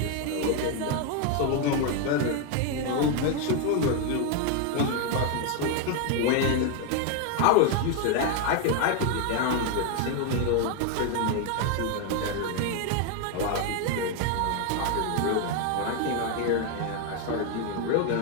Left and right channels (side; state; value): both; different; correlation 0.01